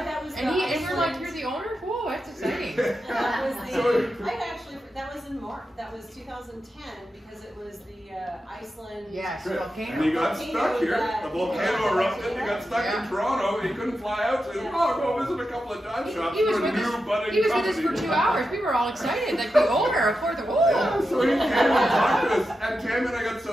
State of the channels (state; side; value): normal; both; correlation 0.89